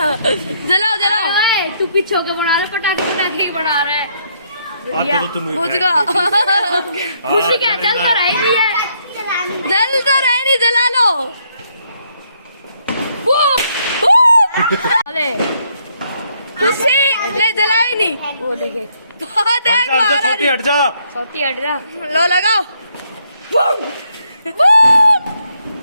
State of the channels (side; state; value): both; inverted; correlation -0.72